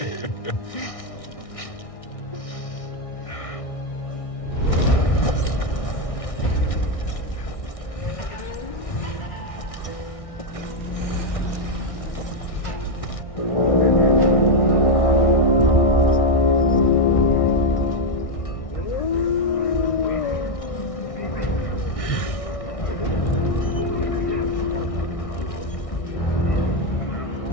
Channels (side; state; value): right; late; 1.6 ms